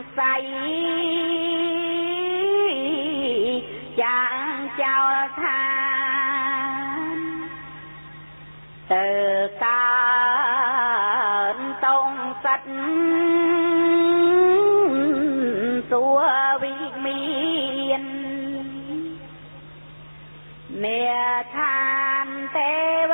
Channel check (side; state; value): both; inverted; correlation -1.00